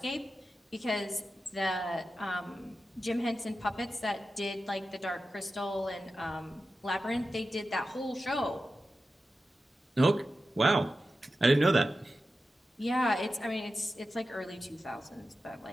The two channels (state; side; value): normal; both; correlation 0.92